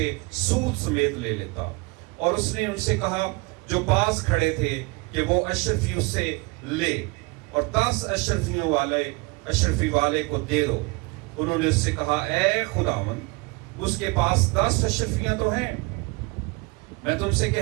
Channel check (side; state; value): left; quieter; 26.8 dB